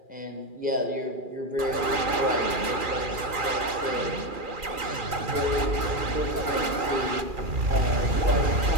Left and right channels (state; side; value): late; left; 2.4 ms